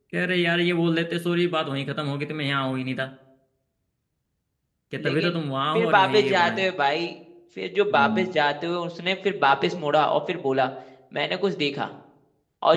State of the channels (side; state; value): both; identical; correlation 1.00